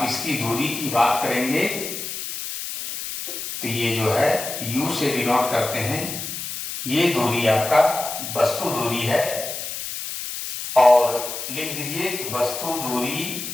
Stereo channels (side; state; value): left; noise; hiss, 6 dB below the sound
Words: इसकी दूरी की बात करेंगे तो ये जो है U से डिनोट करते हैं, ये दूरी आपका वस्तु दूरी है। और लिख दीजिए कि वस्तु दूरी